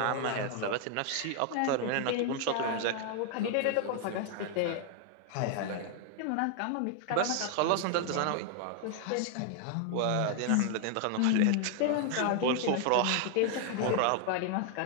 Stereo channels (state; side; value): different; both; correlation 0.00